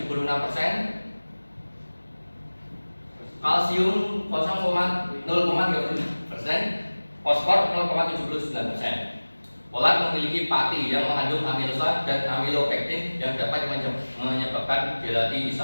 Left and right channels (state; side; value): inverted; both; correlation -1.00